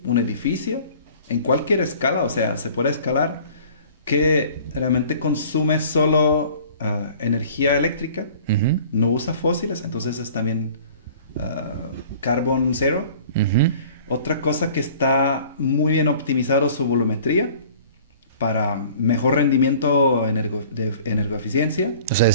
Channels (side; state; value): both; inverted; correlation -0.48